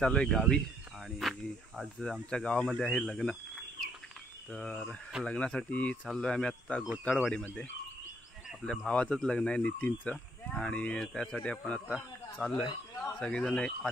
आहे गावी आणि आज आमच्या गावामध्ये आहे लग्न। तर लग्नासाठी चाललो आहे आम्ही आत्ता गोताळवाडीमध्ये। आपल्या भावाचंच लग्न आहे, नितीनचं, आणि त्यासाठी आपण आता चाललो आहे। सगळेजण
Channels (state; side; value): normal; both; correlation 0.69